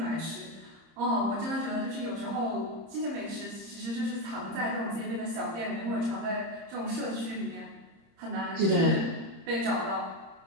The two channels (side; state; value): left; late; 30 ms